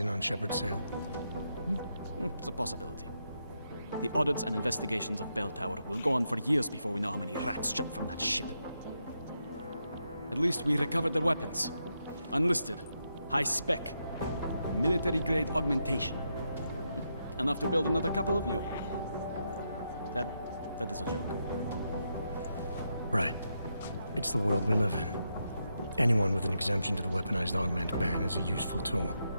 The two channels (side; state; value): both; inverted; correlation -0.83